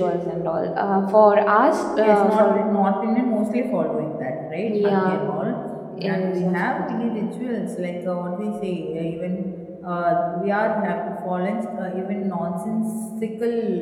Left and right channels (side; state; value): both; identical; correlation 1.00